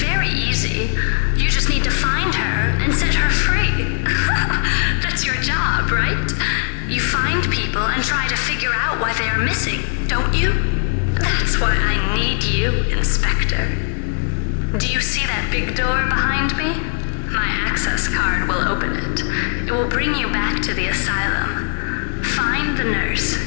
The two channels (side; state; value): right; silent; 58 dB below the other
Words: easy. You just need to find her and set her free. That's your job, right? You find people and try to figure out why they are missing, don't you? That's why I need you, Inspector. Do you see that big door behind me? My access card will open it. It will bring you back to the asylum. Find the nurse